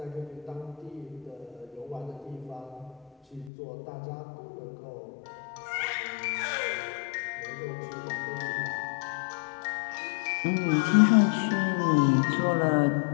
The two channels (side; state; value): right; drops out; at 3.5 s